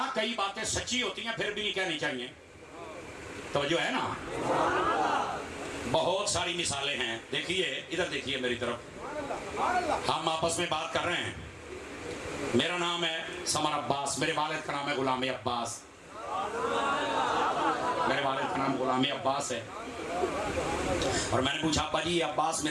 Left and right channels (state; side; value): identical; both; correlation 1.00